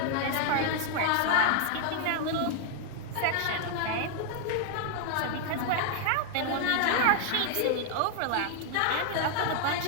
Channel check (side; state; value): both; different; correlation 0.00